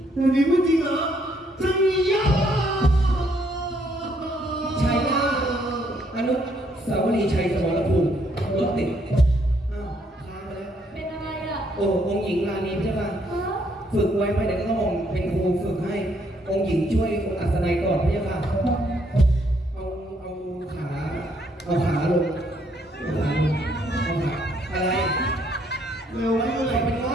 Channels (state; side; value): normal; both; correlation 0.70